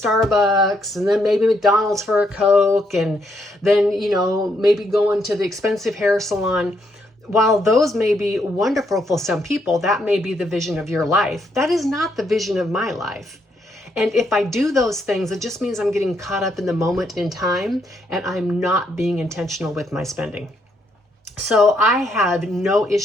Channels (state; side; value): normal; both; correlation 0.75